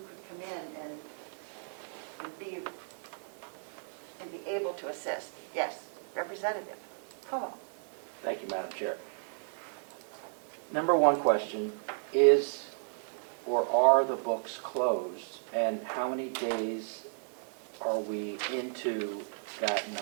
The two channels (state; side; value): silent; left; digital silence